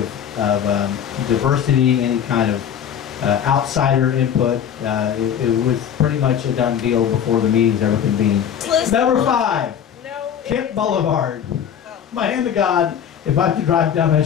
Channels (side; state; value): right; quieter; 8.8 dB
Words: diversity, any kind of outsider input. It was pretty much a done deal before the meetings ever convened. Number 5, Kent Boulevard. My hand to God, if I have to drive down that